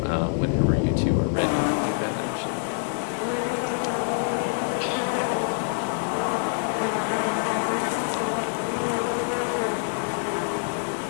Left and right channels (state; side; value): silent; right; digital silence